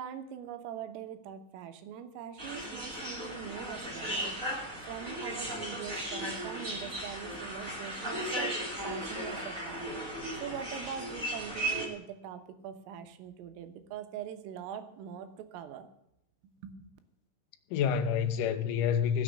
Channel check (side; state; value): left; late; 4.0 ms